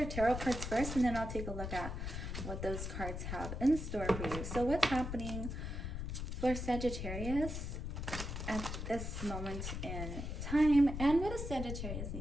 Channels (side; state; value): left; noise; rumble, 4 dB below the sound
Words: tarot cards first, and then I'll take a look at what those cards have in store for you. So what's happening for Sagittarius at this moment in time, and what does Sagittarius